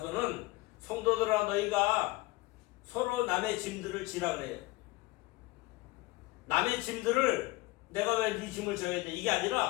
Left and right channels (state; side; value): quieter; right; 21.0 dB